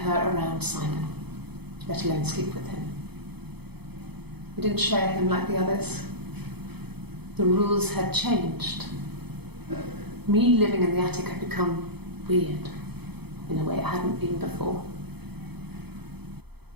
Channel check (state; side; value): late; left; 0.97 ms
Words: around Simon, let alone sleep with him. We didn't share him like the others. The rules had changed. Me living in the attic had become weird in a way it hadn't been before.